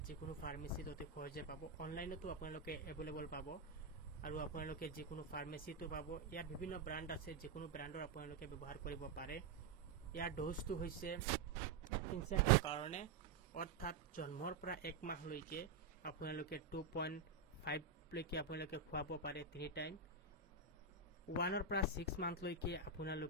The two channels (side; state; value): left; quieter; 4.4 dB